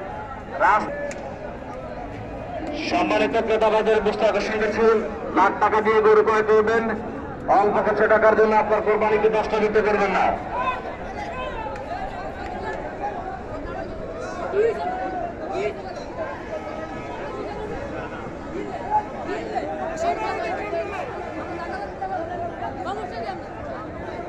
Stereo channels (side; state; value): both; identical; correlation 1.00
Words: সম্মানিত ক্রেতাবাদের দৃষ্টি আকর্ষণ করছি, লাখ টাকা দিয়ে গরু ক্রয় করবেন, অল্প কিছু টাকার জন্য আপনার কোরবানিকে নষ্ট দিতে পারবেন না।